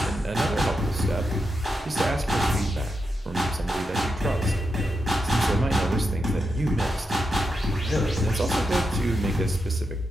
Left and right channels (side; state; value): both; normal; correlation 0.86